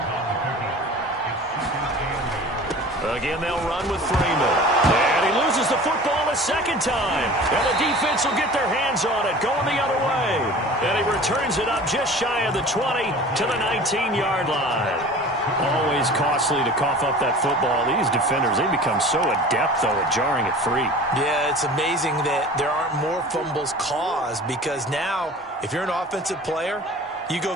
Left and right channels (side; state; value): both; normal; correlation 0.41